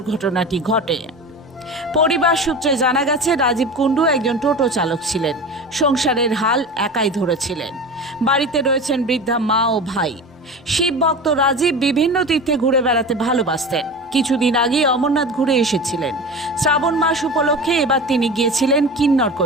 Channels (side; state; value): both; normal; correlation 0.31